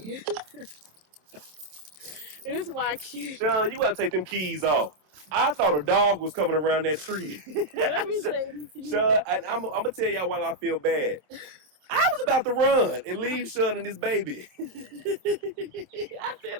It is my kid. Sean, you gotta take them keys off. I thought a dog was coming around that tree. Let me say this to you. Sean, I'm gonna tell y'all why I feel bad. I was about to run and leave Sean and his baby. I said,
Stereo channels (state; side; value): late; left; 27 ms